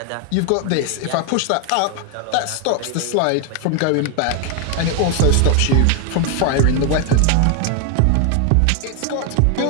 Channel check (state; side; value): different; both; correlation 0.01